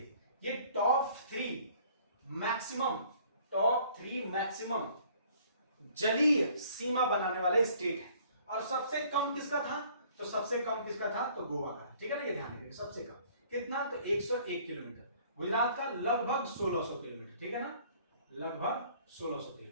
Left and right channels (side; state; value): both; inverted; correlation -0.57